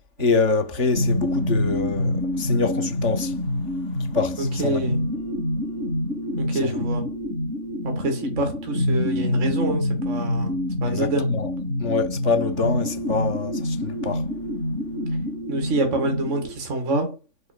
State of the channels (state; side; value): late; left; 3.5 ms